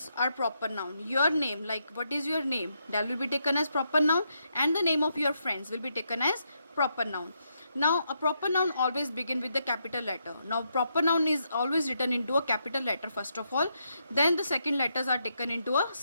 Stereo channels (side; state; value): both; inverted; correlation -0.80